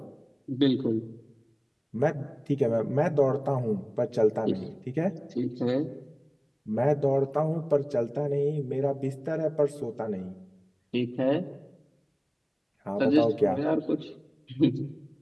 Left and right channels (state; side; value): identical; both; correlation 1.00